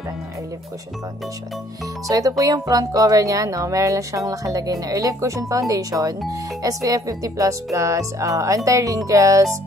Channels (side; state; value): both; normal; correlation 0.61